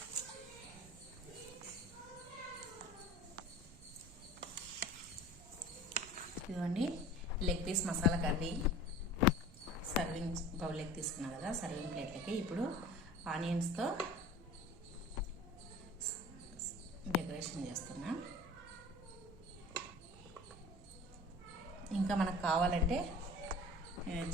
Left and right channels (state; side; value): noise; right; rumble, 20 dB below the sound